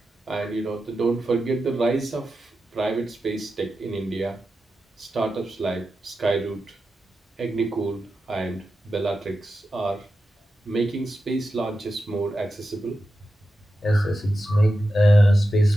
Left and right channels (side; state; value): both; normal; correlation 0.91